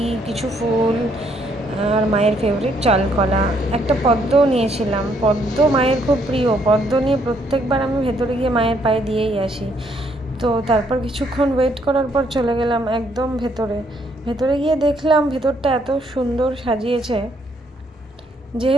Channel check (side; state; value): both; normal; correlation 0.70